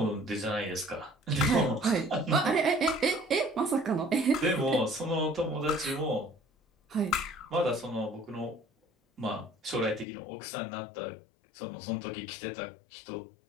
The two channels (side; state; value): right; drops out; at 10.1 s